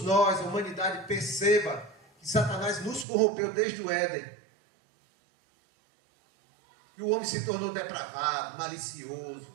nós, a humanidade perceba que Satanás nos corrompeu desde o Éden. Que o homem se tornou depravado, malicioso,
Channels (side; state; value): left; drops out; at 3.1 s